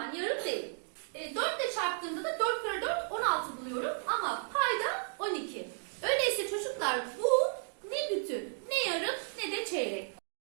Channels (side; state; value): left; silent; 55 dB below the other